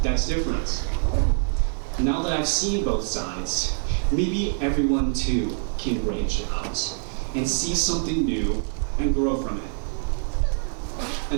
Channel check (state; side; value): silent; left; digital silence